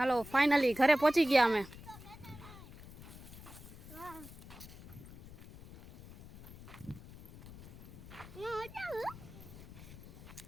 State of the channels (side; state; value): left; noise; rumble, 16 dB below the sound